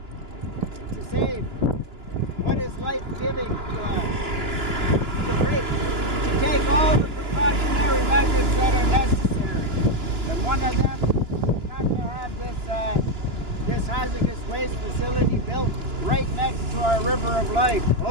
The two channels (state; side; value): late; left; 2.9 ms